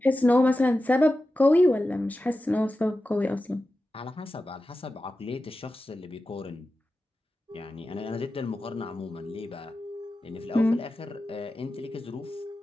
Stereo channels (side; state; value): both; normal; correlation 0.93